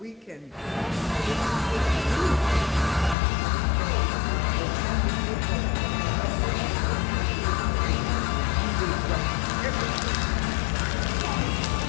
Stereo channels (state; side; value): drops out; right; at 3.2 s